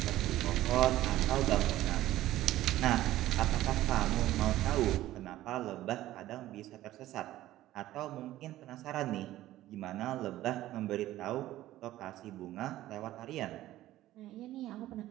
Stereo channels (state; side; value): quieter; left; 14.9 dB